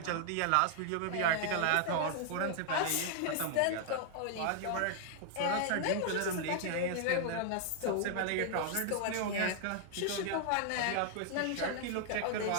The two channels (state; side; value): different; both; correlation -0.01